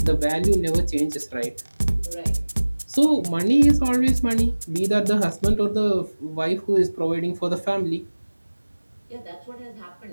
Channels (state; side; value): inverted; both; correlation -1.00